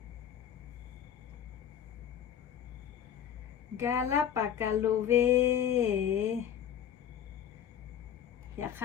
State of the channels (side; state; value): right; quieter; 9.4 dB